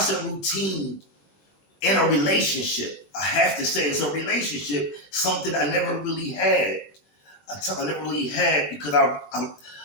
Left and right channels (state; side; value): late; right; 21 ms